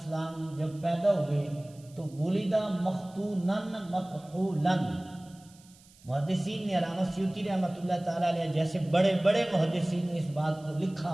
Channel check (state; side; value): noise; right; hiss, 27 dB below the sound